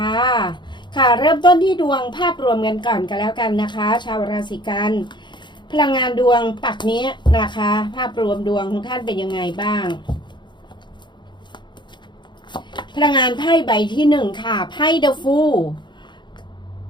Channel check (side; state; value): right; late; 0.22 ms